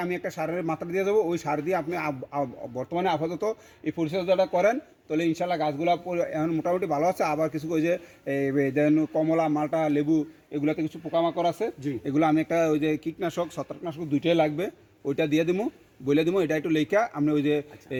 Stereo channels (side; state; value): both; identical; correlation 1.00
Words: আমি একটা সারের মাত্রা দিয়ে যাবো, ওই সার দিয়ে আপনি বর্তমানে আপাতত এই পরিচর্যাটা করেন, তাহলে ইনশাল্লাহ গাছগুলো এখন মোটামুটি ভালো আছে। আবার কিছু ওই যে যেন কমলা, মালটা, লেবু এগুলোতে কিছু পোকামাকড় আছে, জি। এগুলো আমি একটা ওই যে কীটনাশক, ছত্রাকনাশক দুইটাই লাগবে, ওইটা দিয়ে দেবো, বলে দেবো। এটা একটু লেখা আপনি ওই যে